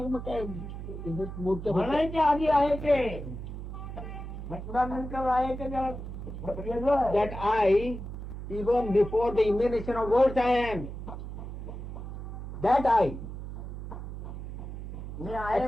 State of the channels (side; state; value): right; noise; hum, 8 dB below the sound